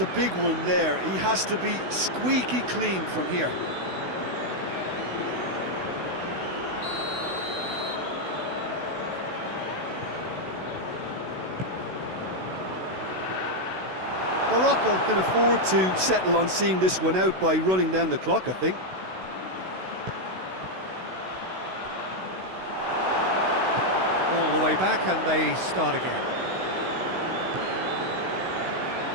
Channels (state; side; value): late; left; 16 ms